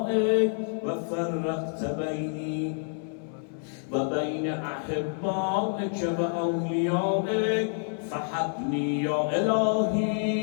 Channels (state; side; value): silent; right; 57 dB below the other